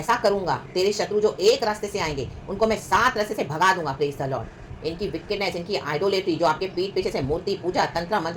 करूंगा, तेरे शत्रु जो एक रास्ते से आएंगे उनको मैं 7 रास्ते से भगा दूंगा। Praise the Lord. इनकी विकेटनेस, इनकी आइडोलेट्री, जो आपके पीठ पीछे से मूर्ति पूजा तंत्र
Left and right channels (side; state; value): both; identical; correlation 1.00